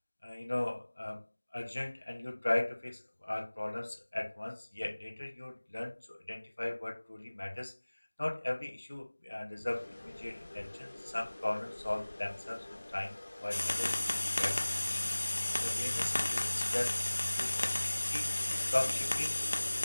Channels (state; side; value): inverted; both; correlation -1.00